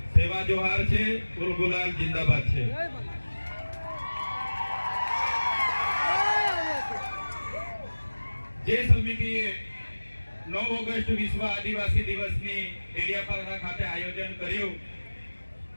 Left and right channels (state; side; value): inverted; both; correlation -1.00